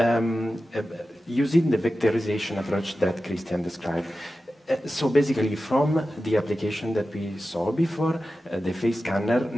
using the vectorization approach that Cristian described. So basically from the application that we saw before, the face scanner,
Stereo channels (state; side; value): normal; both; correlation 0.93